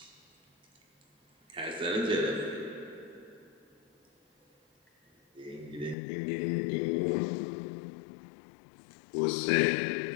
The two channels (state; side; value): drops out; right; at 6.0 s